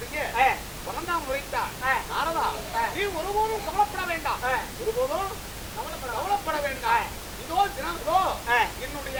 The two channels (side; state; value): both; identical; correlation 1.00